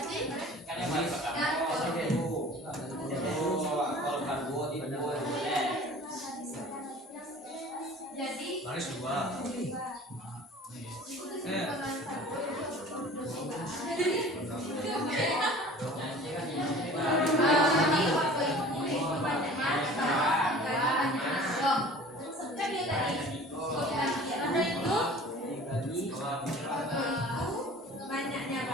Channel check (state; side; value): normal; both; correlation 0.45